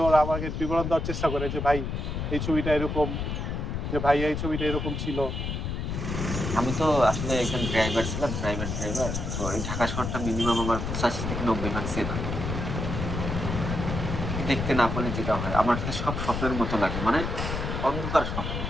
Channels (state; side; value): noise; left; rumble, 3 dB below the sound